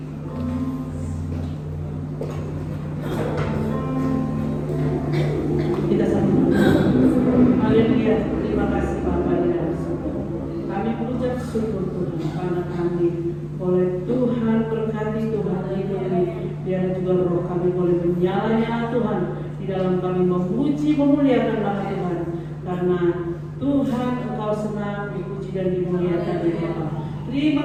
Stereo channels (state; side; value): identical; both; correlation 1.00